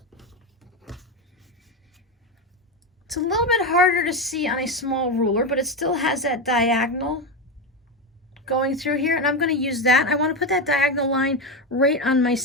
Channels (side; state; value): both; normal; correlation 0.13